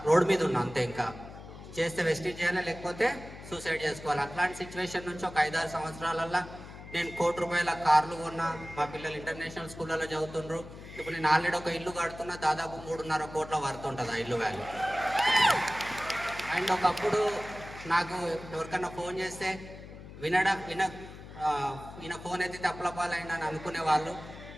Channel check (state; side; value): noise; left; hum, 14 dB below the sound